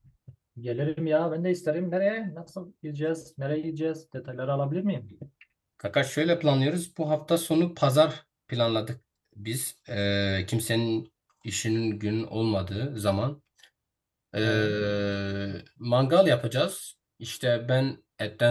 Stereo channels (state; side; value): identical; both; correlation 1.00